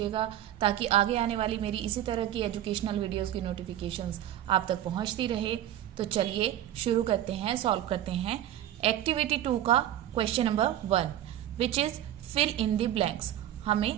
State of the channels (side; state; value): left; quieter; 12.2 dB